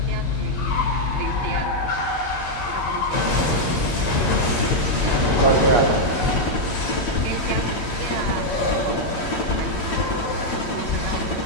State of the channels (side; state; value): right; late; 8.9 ms